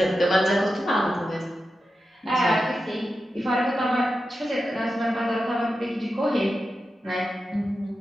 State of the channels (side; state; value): both; normal; correlation 0.91